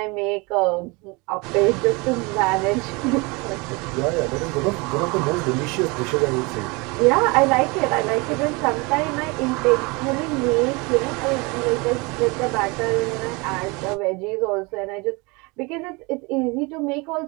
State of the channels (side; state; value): left; quieter; 27.1 dB